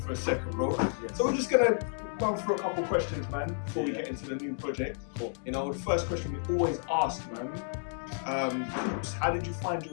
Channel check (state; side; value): silent; right; digital silence